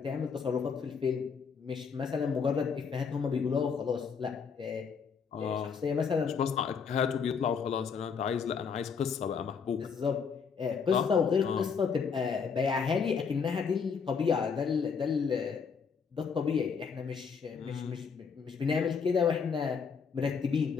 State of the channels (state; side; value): quieter; right; 6.0 dB